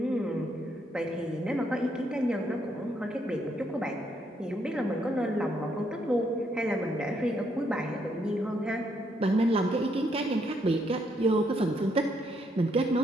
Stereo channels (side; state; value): both; normal; correlation 0.74